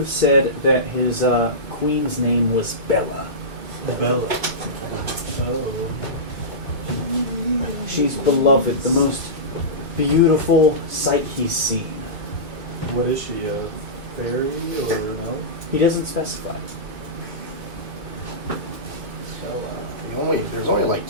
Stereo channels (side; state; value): left; late; 2.2 ms